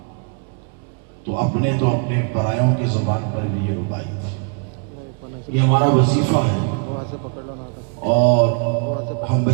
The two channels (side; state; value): left; quieter; 37.4 dB